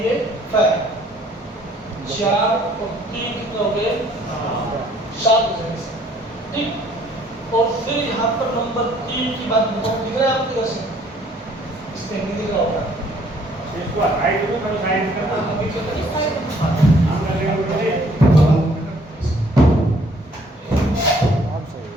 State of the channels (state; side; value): normal; both; correlation 0.61